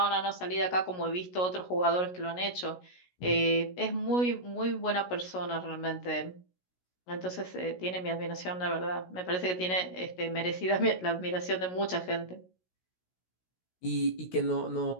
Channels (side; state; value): right; late; 16 ms